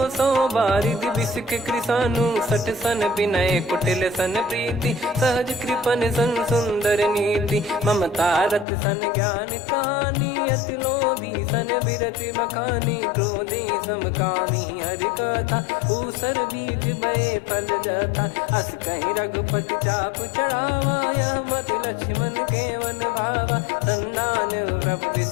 बारिधि बिसक कृसानु, 60 सन विनय कुटिल सन प्रीति। सहज कृपन सन सुंदर नीति, ममता रत सन ज्ञान कहानी। अति लोभी सन बिरति बखानी, क्रोधी समकामी हरि कथा। ऊसर बीज भय फल जाता, अस कहीं रघुपति चाप चढ़ावा। यह मत लक्ष्मण के वन भावा, संदान प्रभु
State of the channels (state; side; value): drops out; right; at 8.7 s